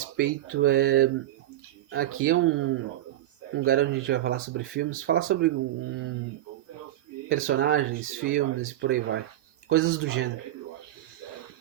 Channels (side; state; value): left; quieter; 13.8 dB